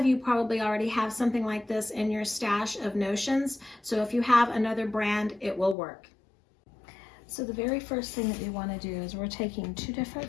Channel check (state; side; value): drops out; right; at 5.8 s